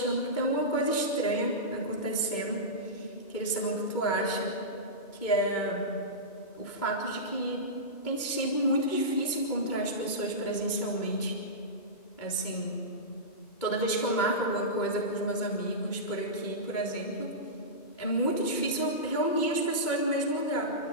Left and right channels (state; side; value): late; right; 2.2 ms